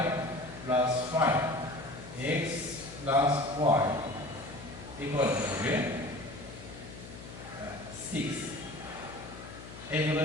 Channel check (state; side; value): noise; left; hum, 14 dB below the sound